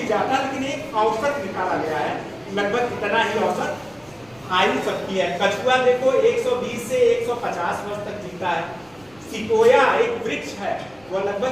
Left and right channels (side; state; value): right; noise; rumble, 29 dB below the sound